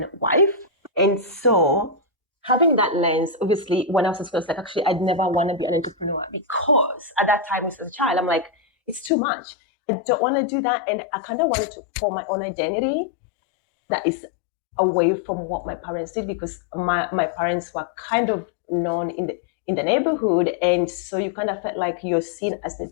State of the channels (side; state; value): right; drops out; at 9.1 s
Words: wife. And so having that lens, obviously, when I was in school, I was like, actually, I'd never want to be an entrepreneur because at that time, as a child, I'm like, it's too much. I don't want to do that. And I kind of wanted to form my own identity that is away from what my parents did, because my parents were kind of known in the neighborhood. And so you kind of felt like you're seen as the